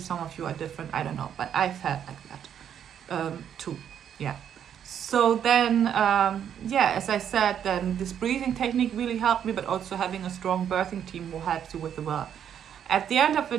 of you are different, I don't know, but I felt like that too. Yeah. So then, yeah, as I said, then this breathing technique really helped me, but also having a strong birthing team will help you with the work. At the end of the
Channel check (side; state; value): left; quieter; 9.0 dB